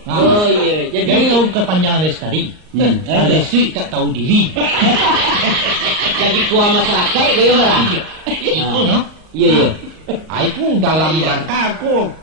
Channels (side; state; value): left; late; 38 ms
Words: iya. Jadi tahu kepanjangan lestari. Lestari tak tahu diri. Jadi kuah masyarakat gaya marah. Itu no. Iya. Aku dalam rangka aku